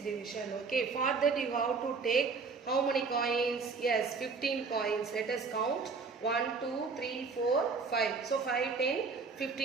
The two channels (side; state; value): left; quieter; 4.7 dB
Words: Okay. For that you have to take how many coins? Yes, 15 coins. Let us count. 1, 2, 3, 4, 5. So 5, 10,